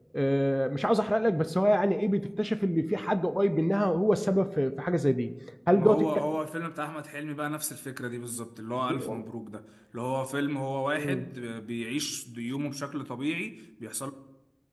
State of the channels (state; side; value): identical; both; correlation 1.00